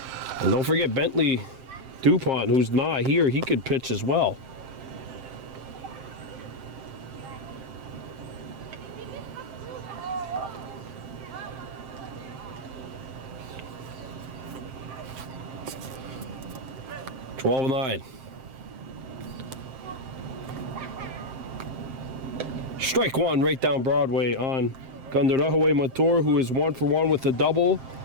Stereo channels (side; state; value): left; late; 7.6 ms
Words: And don't forget Bentley DuPont, who's not here, he could pitch as well. $12-9. Strike 1 right down Broadway on Warhawks Montour, who is 1 for 1 with a double,